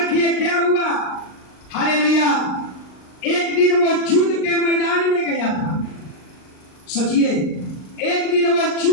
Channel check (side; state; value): right; late; 38 ms